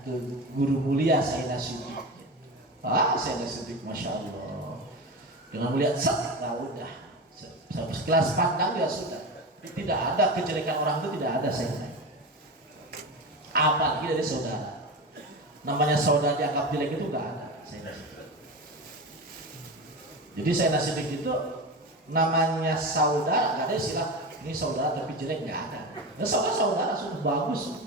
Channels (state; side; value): normal; both; correlation 0.23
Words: ke guru mulia Sayyidina Siddiq. Sayyidina Siddiq, masya Allah, dengan melihat set, nah udah, sekelas pandang ya sudah, tidak ada kejelekan orang itu tidak ada saya. Apalagi dari saudara. Namanya saudara dianggap jelek itu enggak ada. Jadi Sayyidina Siddiq itu namanya saudara, enggak ada istilah ini saudara tapi jelek, enggak ada. Nah, saudara sudah